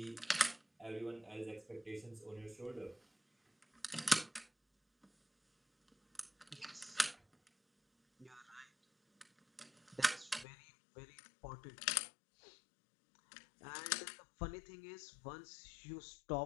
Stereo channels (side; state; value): right; drops out; at 10.5 s